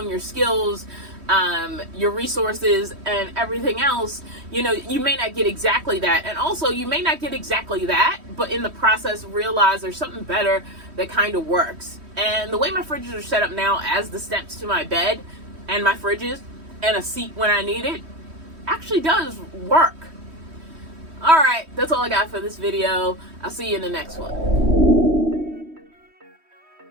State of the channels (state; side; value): late; left; 3.1 ms